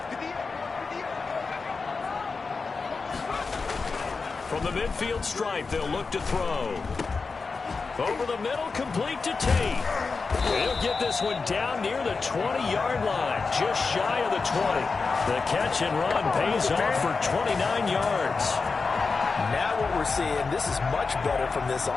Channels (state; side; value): quieter; right; 4.5 dB